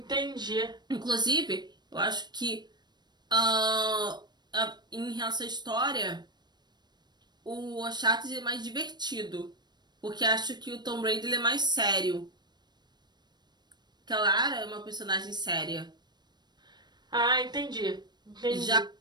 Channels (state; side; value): late; left; 0.21 ms